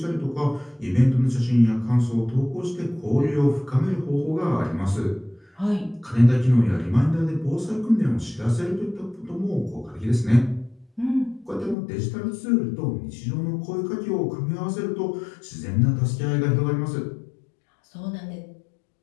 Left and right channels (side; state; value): right; drops out; at 11.8 s